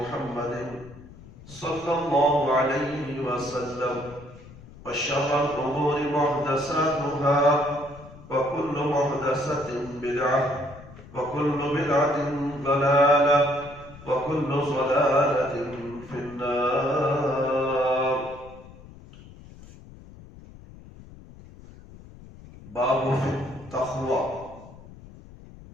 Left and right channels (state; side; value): noise; left; rumble, 19 dB below the sound